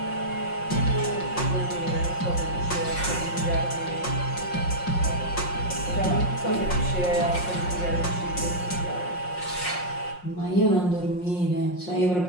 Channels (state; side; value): late; right; 5.6 ms